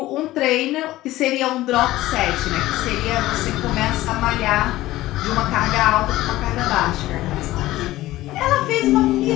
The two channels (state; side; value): quieter; right; 16.5 dB